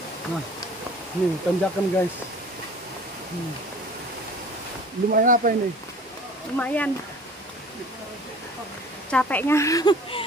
Nah, ini tanjakan guys. Lumayan apa ini? Lumayan. Capeknya.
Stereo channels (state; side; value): normal; both; correlation 0.46